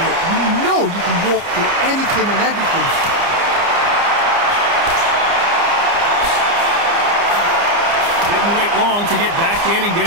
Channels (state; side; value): late; left; 29 ms